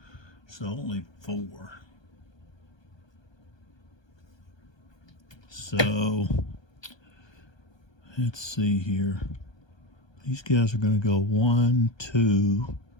so only 4. So let's see here. These guys are going to go 1, 2.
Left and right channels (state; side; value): late; right; 1.2 ms